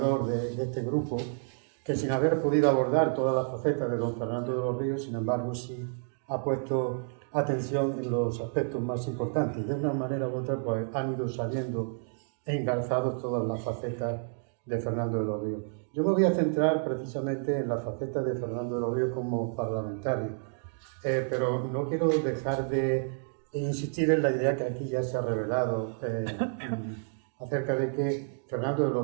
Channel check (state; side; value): silent; left; digital silence